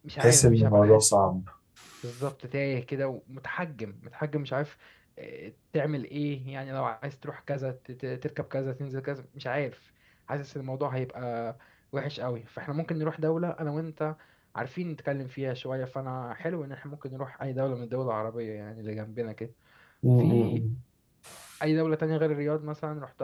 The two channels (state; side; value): identical; both; correlation 1.00